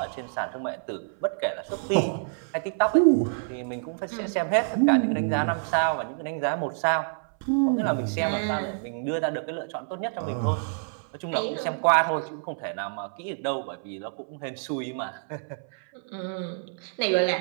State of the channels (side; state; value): left; silent; 59 dB below the other